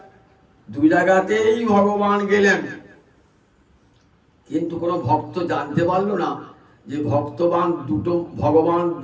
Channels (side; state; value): both; identical; correlation 1.00